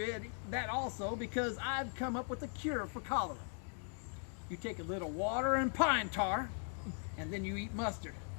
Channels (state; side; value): silent; right; 51 dB below the other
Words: that also because I'd come up with a cure for cholera. You take a little water and pine tar, and then you eat mustard.